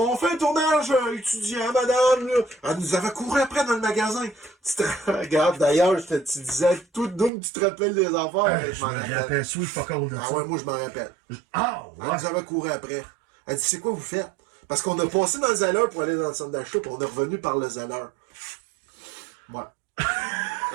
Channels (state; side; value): drops out; left; at 7.3 s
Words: fait un tournage étudiant, madame. Là. Elle nous avait couru après dans le magasin. Tu te regardes, d'ailleurs, tu disais tout d'où tu te rappelles des affaires. Je me rappelle, sweet fuck all de ça. Ah ouais, moi je m'en rappelle. Ouais. Elle nous avait couru après. Elle dit, c'est quoi vous faites? Parce qu'on a passé dans le Zeller pour aller dans le centre d'achat, puis on est revenu par le Zeller. Ouais.